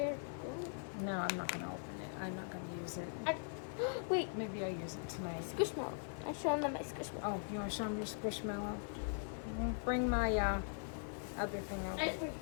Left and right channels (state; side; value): silent; right; 50 dB below the other